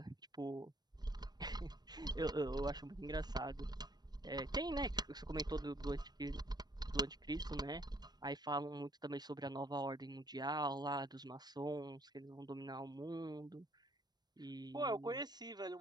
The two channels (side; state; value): left; late; 0.20 ms